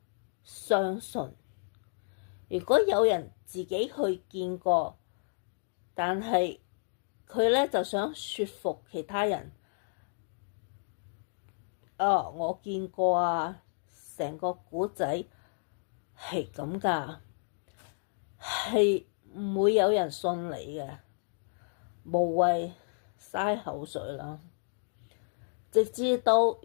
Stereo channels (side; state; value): right; silent; digital silence